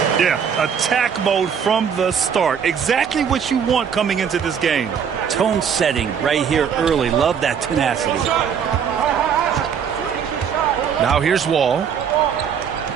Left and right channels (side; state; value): left; quieter; 7.5 dB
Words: Yeah, attack mode from the start. Exactly what you want coming into this game. Tone setting right here early. Love that tenacity. Now here's Wall.